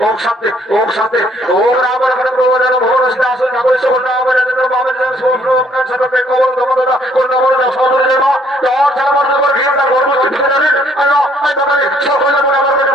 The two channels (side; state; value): both; normal; correlation 0.64